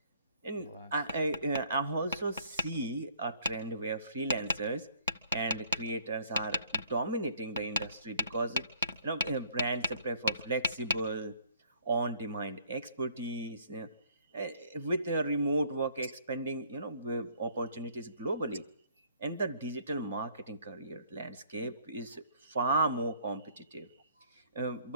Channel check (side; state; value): both; inverted; correlation -0.60